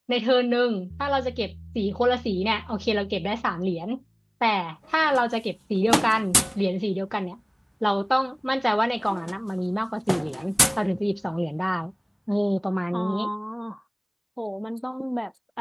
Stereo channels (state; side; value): identical; both; correlation 1.00